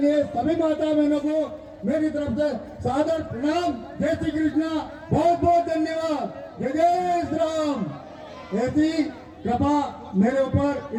सभी माता बहनों को मेरी तरफ से सादर प्रणाम। जय श्री कृष्णा, बहुत बहुत धन्यवाद। जय जय श्री राम। ऐसी कृपा मेरे ऊपर,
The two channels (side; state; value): both; identical; correlation 1.00